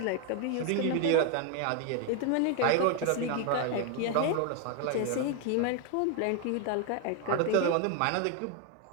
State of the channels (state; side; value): different; both; correlation 0.01